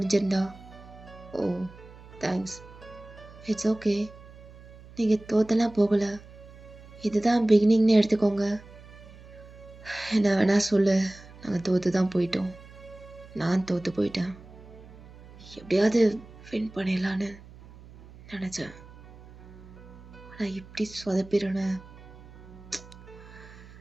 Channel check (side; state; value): right; noise; hum, 19 dB below the sound